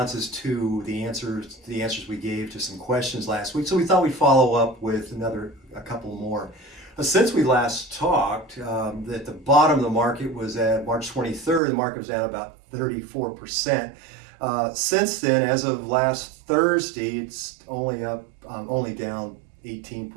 to the answers we gave to some questions last week, so we thought we'd follow up with a couple more. Since we last talked, at the bottom of the market was at March 23rd. The market was down about 34%. Since then, as of last Thursday, it's only down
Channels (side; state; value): left; drops out; at 11.6 s